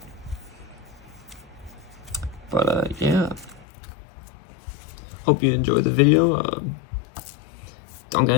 But yeah, hope you enjoyed the video. Don't got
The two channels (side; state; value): right; drops out; at 3.7 s